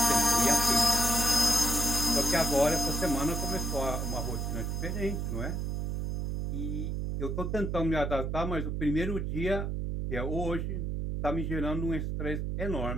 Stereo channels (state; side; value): noise; right; hum, 1 dB below the sound